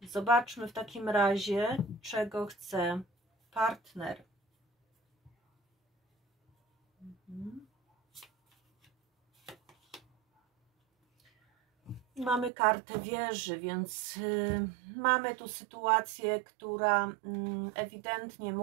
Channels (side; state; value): left; drops out; at 12.5 s